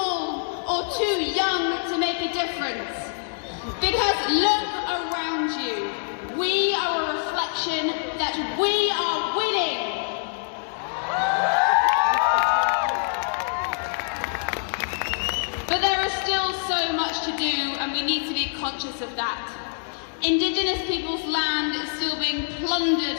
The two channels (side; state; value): right; silent; digital silence